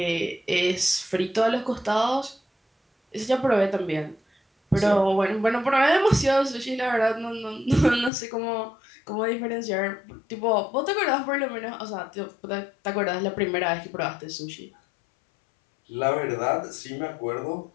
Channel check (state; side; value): drops out; right; at 8.1 s